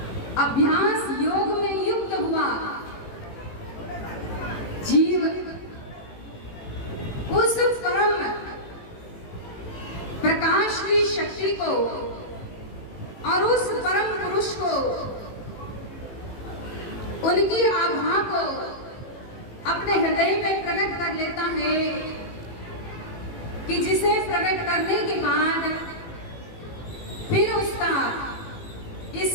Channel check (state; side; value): late; right; 18 ms